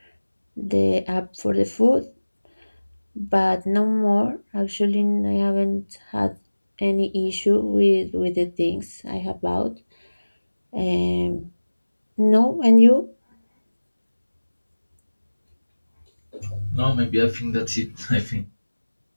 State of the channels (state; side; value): inverted; both; correlation -1.00